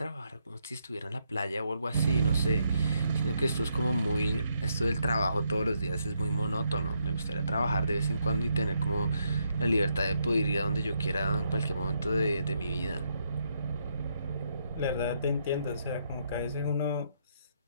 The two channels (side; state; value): both; inverted; correlation -0.77